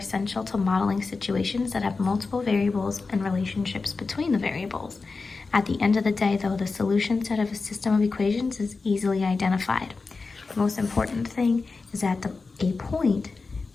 to modeling situations that have multiple variables and relationships between the variables. At the end of the day, though, the solution set of a system of equations is easily identified. The most important thing is that a point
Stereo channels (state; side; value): quieter; right; 4.1 dB